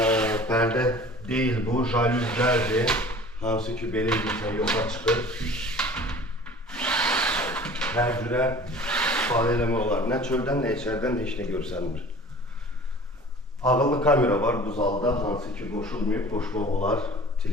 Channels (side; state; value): both; normal; correlation 0.44